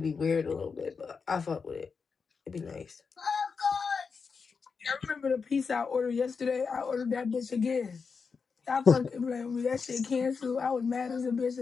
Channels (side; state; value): right; quieter; 5.3 dB